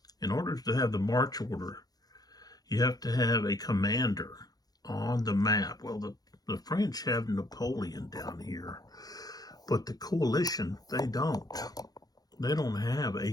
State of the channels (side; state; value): right; late; 0.19 ms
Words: in order to have the march order, you have to have a commander on the map. Well, the French have Napoleon down here, but the coalition, they don't. They don't have